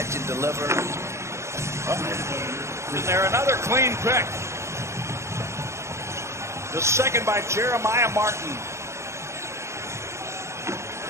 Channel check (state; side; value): late; left; 0.13 ms